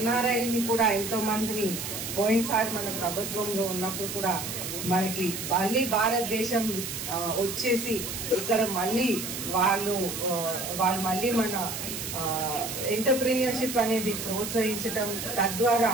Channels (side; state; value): right; noise; hiss, 6 dB below the sound